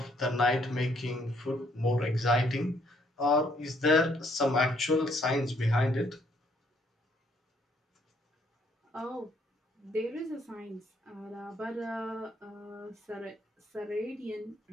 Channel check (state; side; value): normal; both; correlation 0.68